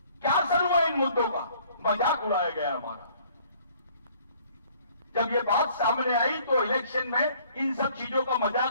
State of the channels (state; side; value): inverted; both; correlation -0.58